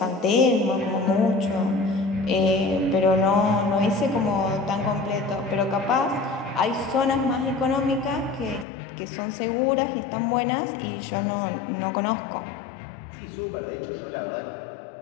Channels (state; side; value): drops out; right; at 8.7 s